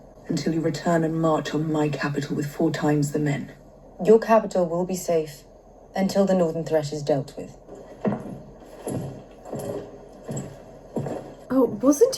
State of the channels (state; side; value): identical; both; correlation 1.00